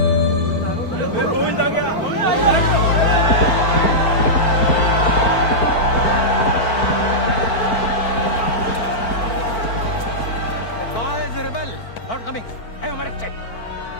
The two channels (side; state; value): right; late; 4.5 ms